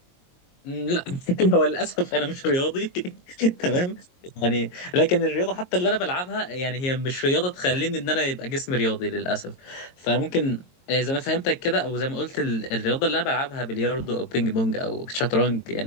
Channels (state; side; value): late; right; 22 ms